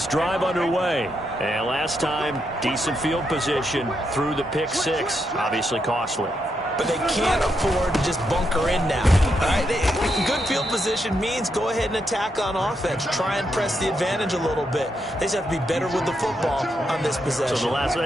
drive underway. And last time, decent field position through the pick six. Obviously costly. But they can't afford to just bunker in now. All right? Good field position means go ahead and attack on offense. Try and press the advantage a little bit. They just have to be better with the football on this possession. So the last one,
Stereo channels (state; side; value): normal; both; correlation 0.81